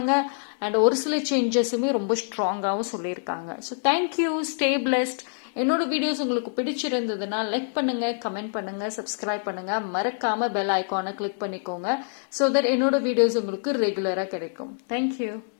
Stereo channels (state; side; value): silent; right; digital silence